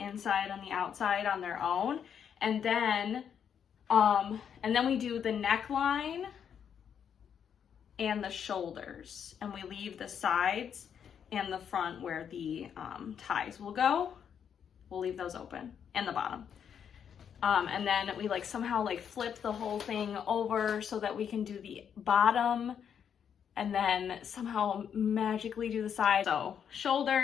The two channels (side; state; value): right; quieter; 8.0 dB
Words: inside and the outside on their own, and then we do the neckline and the shoulders, and we leave the sides and the front where the ties will go. We'll leave those open, and the bottom. And then we like somehow like flip the whole thing over so that we can do the bottom, and then somehow magically do the side. So